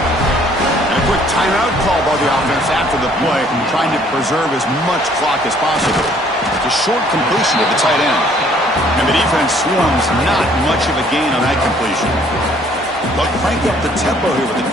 And a quick timeout call by the offense after the play, trying to preserve as much clock as possible. It's a short completion to the tight end. And the defense swarms not much of a gain on that completion. They'll crank up the tempo here with the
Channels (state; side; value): normal; both; correlation 0.61